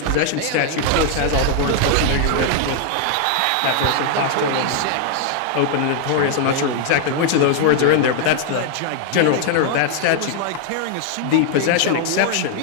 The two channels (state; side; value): different; both; correlation 0.00